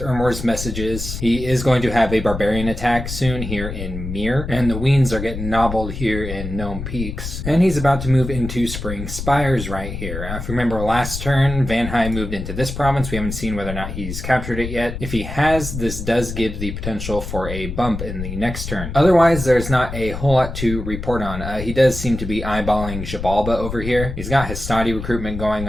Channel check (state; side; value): noise; left; rumble, 7 dB below the sound